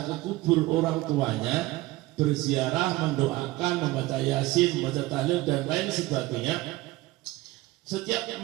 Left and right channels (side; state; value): left; quieter; 18.8 dB